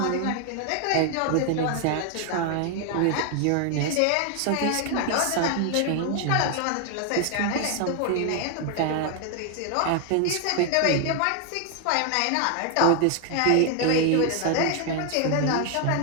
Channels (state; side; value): different; both; correlation 0.00